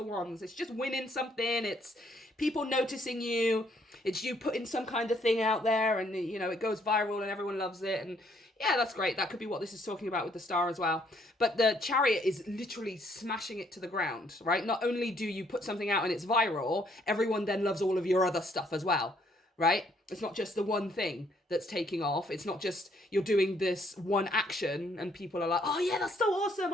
Wands. It's just winning something. It's people noticing you. It's you putting some kind of thing out there, and, you know, it goes viral and everyone loves it. And yeah, that's great. That could be what this is talking about with the star as well. But the Chariot is literally smashing it to the ground, right? Not only do you put something out and it's viral, everyone then loves all of your other stuff as well, right? It's not just the one thing that's taking off. It's not just you're doing this one action and people are like, oh yeah, that's so awesome.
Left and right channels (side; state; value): both; normal; correlation 0.68